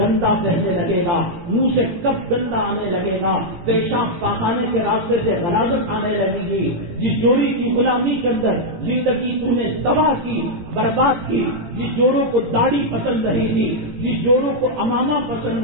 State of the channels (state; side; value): late; left; 17 ms